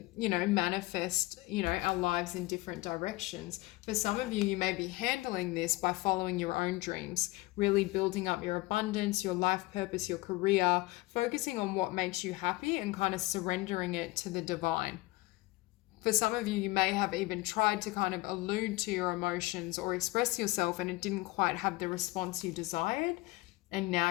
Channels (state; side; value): quieter; right; 20.5 dB